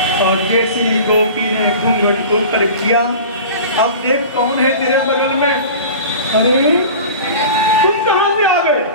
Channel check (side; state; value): both; inverted; correlation -0.37